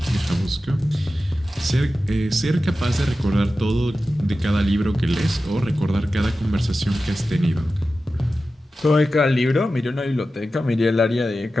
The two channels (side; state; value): both; normal; correlation 0.93